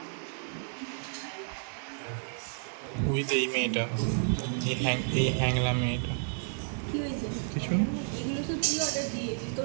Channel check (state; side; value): silent; left; 57 dB below the other